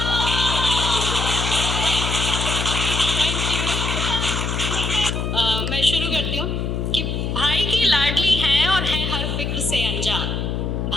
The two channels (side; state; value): left; noise; hum, 2 dB below the sound